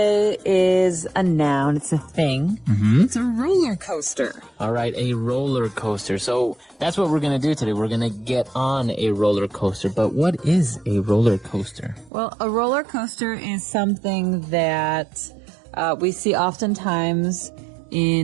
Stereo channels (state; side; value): drops out; left; at 12.1 s